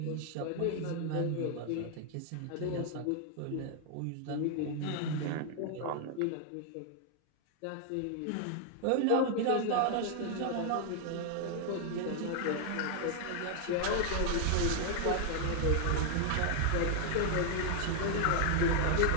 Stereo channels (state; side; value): different; both; correlation 0.00